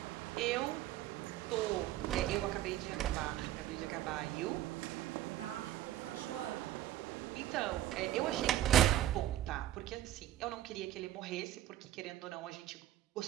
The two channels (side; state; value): left; quieter; 13.5 dB